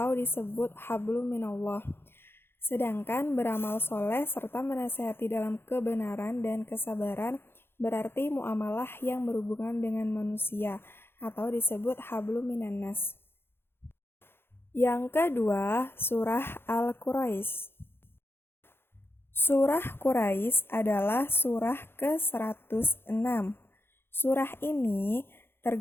disebut hablum minallah. Sedangkan beramal soleh serta menasehati dalam kebenaran dan kesabaran berarti muamalah yang berhubungan dengan manusia atau disebut hablum minannas. Yang kedua, surah Al-Quraisy. Surah Quraisy adalah surah ke-106. Surah ini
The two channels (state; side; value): late; right; 0.11 ms